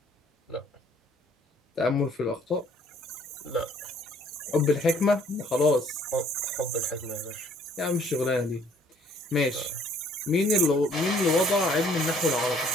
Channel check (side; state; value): both; normal; correlation 0.60